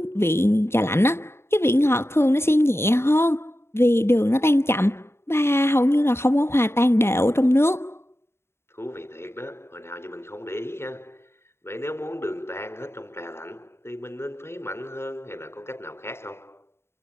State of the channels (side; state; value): right; late; 0.12 ms